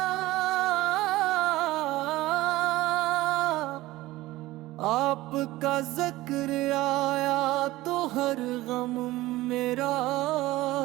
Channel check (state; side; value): quieter; left; 17.9 dB